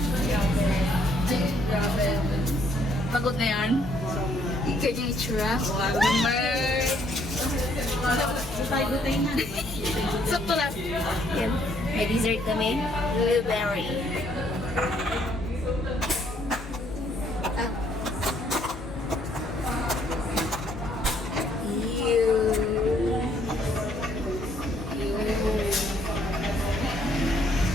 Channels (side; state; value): left; noise; hum, 12 dB below the sound